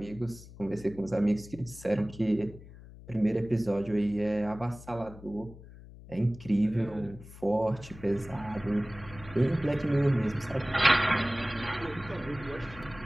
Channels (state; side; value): noise; left; hum, 18 dB below the sound